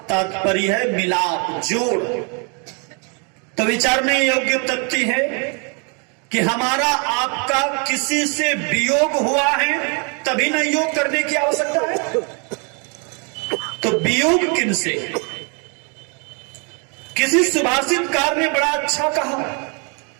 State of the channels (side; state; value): left; quieter; 36.0 dB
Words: तात्पर्य है मिलाप, जोड़। तो विचारने योग्य तथ्य है कि हमारा आपका किसी से वियोग हुआ है तभी न योग करने की आवश्यकता है। तो वियोग किन से? किसी सुभाषितकार ने बड़ा अच्छा कहा,